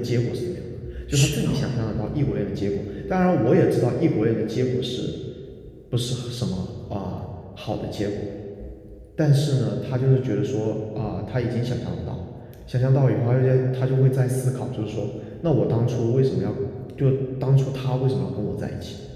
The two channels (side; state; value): both; identical; correlation 1.00